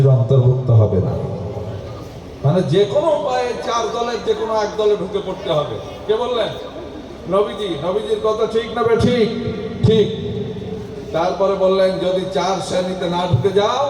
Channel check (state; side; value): identical; both; correlation 1.00